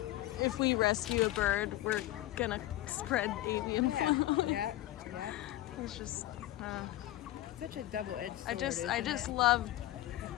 if we rescue a bird, we're gonna spread avian flu. Yeah. It's just, Such a double-edged sword. I just love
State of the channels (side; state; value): right; quieter; 15.4 dB